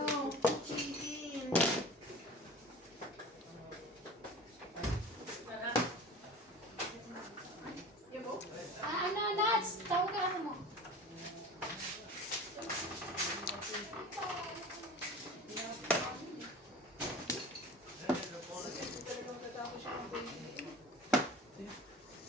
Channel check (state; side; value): normal; both; correlation 0.37